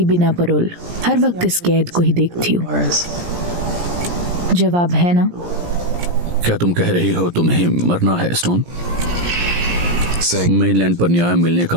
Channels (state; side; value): late; left; 17 ms